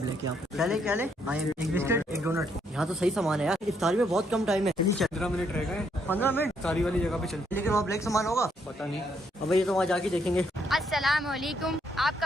यहाँ पे। क्या ले एक बिस्किट, एक डोनट। यहाँ तो सही सामान है यार। इफ्तारी में बहुत कम टाइम है। चलिए चल, 15 मिनट रह गए। 15 मिनट सारी वाली जगह पे चलते। लेकिन वहाँ ब्लैक सामान होगा, पता नहीं। अब ये तो वहाँ जाके देखेंगे। अस्सलाम वालेकुम,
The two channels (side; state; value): both; normal; correlation 0.73